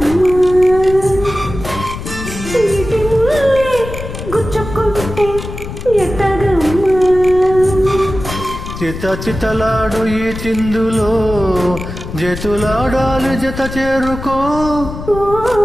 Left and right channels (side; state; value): left; noise; rumble, 9 dB below the sound